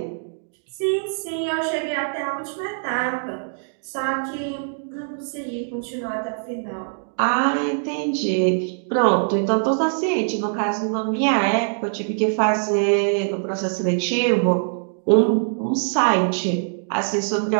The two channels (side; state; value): left; silent; digital silence